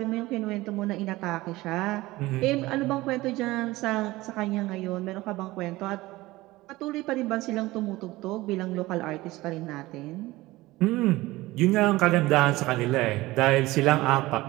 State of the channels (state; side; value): quieter; left; 19.0 dB